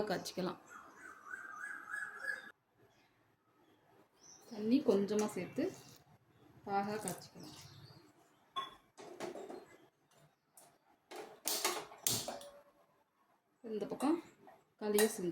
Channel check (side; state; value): both; identical; correlation 1.00